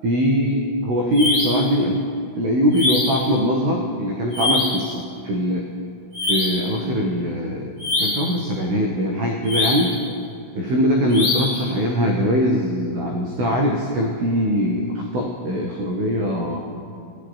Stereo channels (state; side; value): late; left; 16 ms